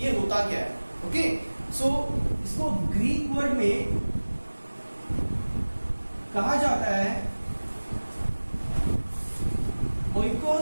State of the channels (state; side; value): inverted; both; correlation -1.00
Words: होता क्या है। ओके, सो इसको ग्रीक वर्ड में कहा जाता है